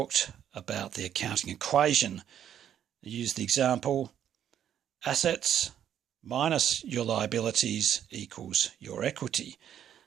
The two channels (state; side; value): quieter; left; 9.9 dB